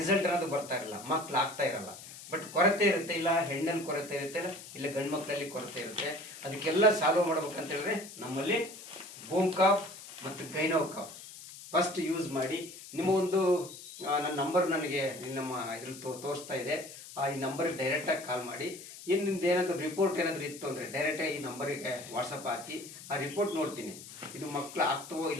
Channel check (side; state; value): left; noise; hiss, 15 dB below the sound